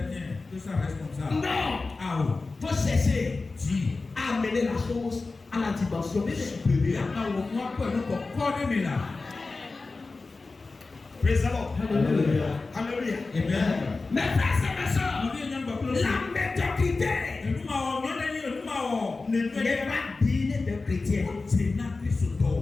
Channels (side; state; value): right; quieter; 3.7 dB